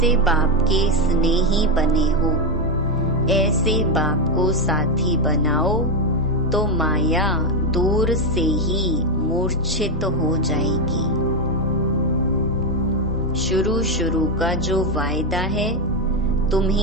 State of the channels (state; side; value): normal; both; correlation 0.06